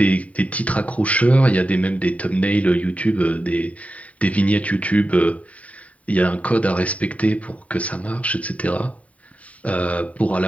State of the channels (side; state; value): right; late; 0.068 ms